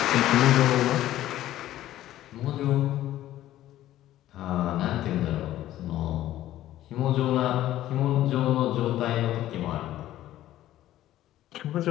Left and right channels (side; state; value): right; quieter; 13.7 dB